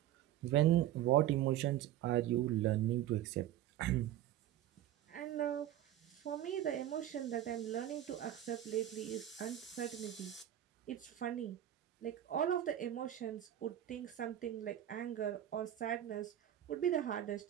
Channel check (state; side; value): quieter; left; 12.3 dB